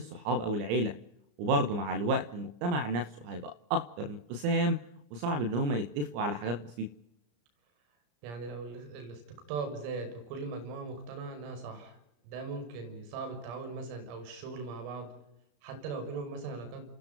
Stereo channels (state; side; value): late; left; 34 ms